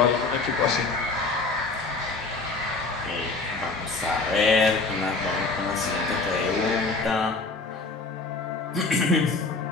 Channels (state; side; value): quieter; right; 3.8 dB